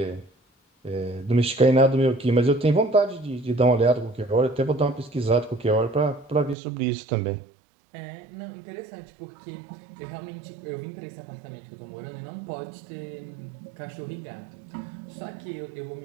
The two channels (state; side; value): drops out; left; at 6.6 s